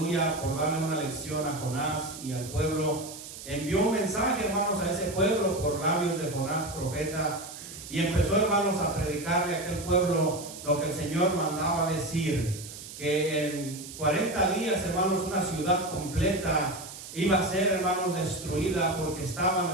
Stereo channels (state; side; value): noise; right; hiss, 13 dB below the sound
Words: por darle una lección a Jonás y al pueblo, envió un mensaje, hermanos, a ese pueblo por labios de Jonás, profeta, y empezó, hermanos, a predicarle a aquel pueblo lo que el Señor mandaba decir, que en 40 días, hermanos, una ciudad completa iba a ser, hermanos, destruida porque estaban,